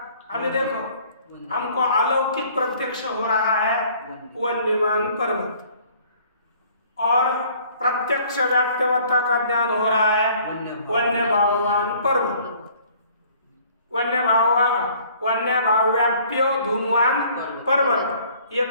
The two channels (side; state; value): both; inverted; correlation -0.56